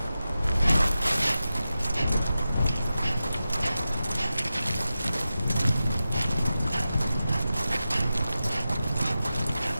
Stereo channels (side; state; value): both; inverted; correlation -0.92